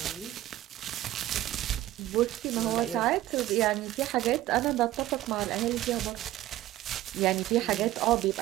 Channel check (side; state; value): left; quieter; 14.7 dB